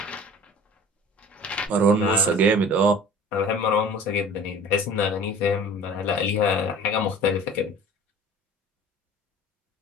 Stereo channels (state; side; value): normal; both; correlation 0.43